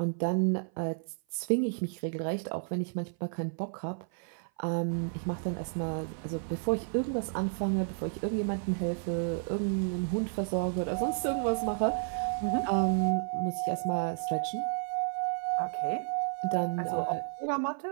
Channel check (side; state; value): left; silent; 55 dB below the other